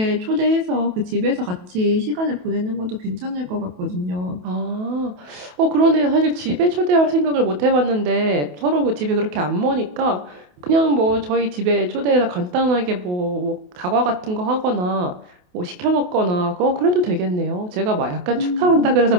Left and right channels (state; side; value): late; left; 28 ms